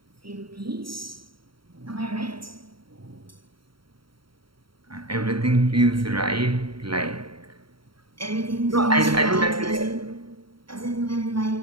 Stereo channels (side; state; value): left; late; 0.73 ms